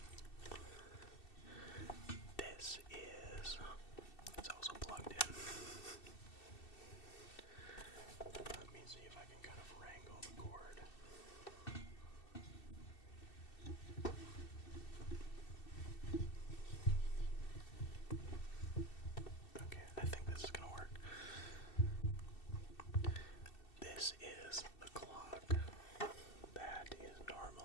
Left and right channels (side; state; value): right; late; 2.7 ms